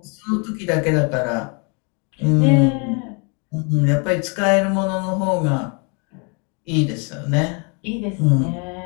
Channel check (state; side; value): quieter; right; 35.2 dB